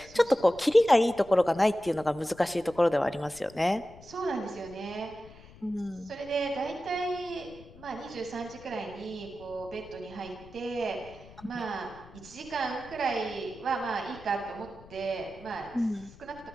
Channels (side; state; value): left; noise; rumble, 21 dB below the sound